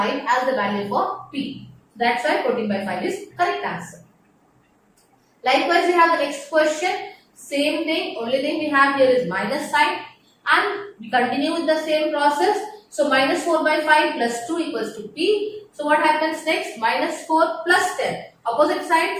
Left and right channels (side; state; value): both; identical; correlation 1.00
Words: as the value for P. That's why 14 by 5 is correct answer. Likewise, we have the next question. Same thing. Only thing we have here is minus sign. And we continue with the same process. So minus 4 by 5 plus 2 equals to P. So what happens next? Minus 4 plus 10. Opposite side.